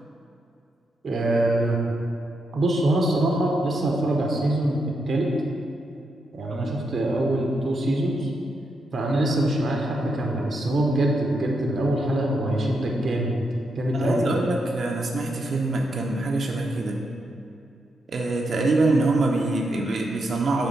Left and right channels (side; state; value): both; normal; correlation 0.82